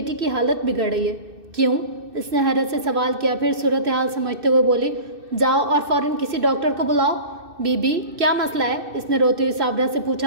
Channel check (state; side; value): late; left; 2.6 ms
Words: کی حالت بگڑ رہی ہے۔ کیوں؟ اس نے حیرت سے سوال کیا، پھر صورتحال سمجھتے ہوئے بولی، جاؤ اور فوراً کسی ڈاکٹر کو بلاؤ۔ بی بی کیا مسئلہ ہے؟ اس نے روتی ہوئی صابرہ سے